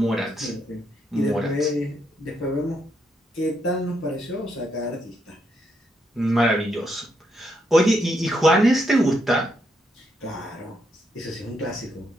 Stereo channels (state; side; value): normal; both; correlation 0.78